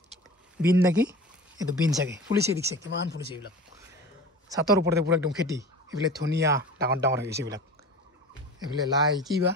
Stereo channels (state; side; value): normal; both; correlation 0.36